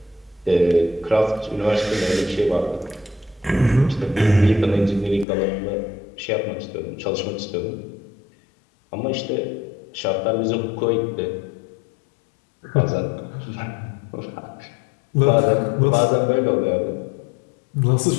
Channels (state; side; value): drops out; right; at 5.2 s